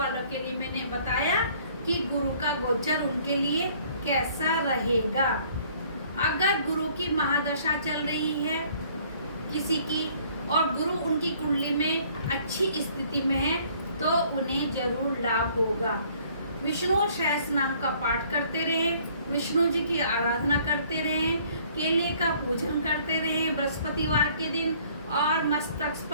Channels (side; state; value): both; inverted; correlation -0.59